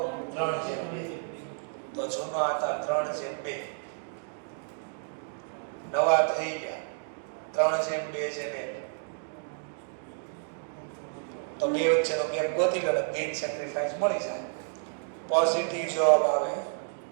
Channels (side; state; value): left; silent; digital silence